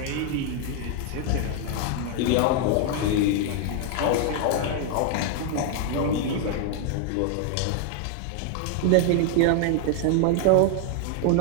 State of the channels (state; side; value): different; both; correlation 0.00